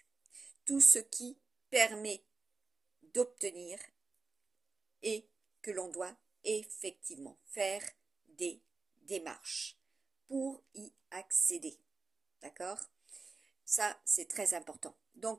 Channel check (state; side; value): quieter; left; 4.2 dB